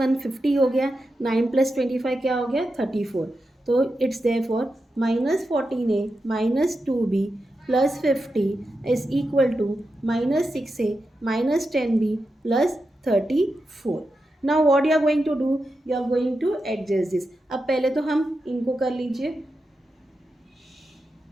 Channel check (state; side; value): normal; both; correlation 0.88